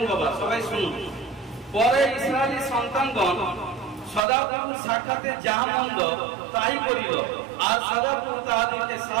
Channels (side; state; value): left; drops out; at 4.2 s